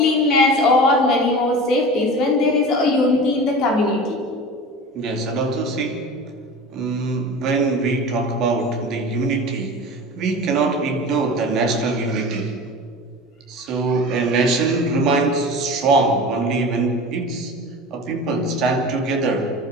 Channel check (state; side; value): normal; both; correlation 0.33